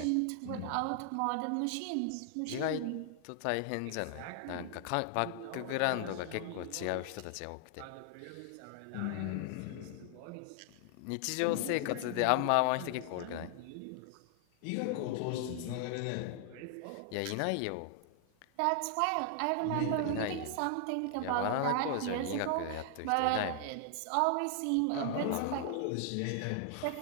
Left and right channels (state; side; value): different; both; correlation 0.00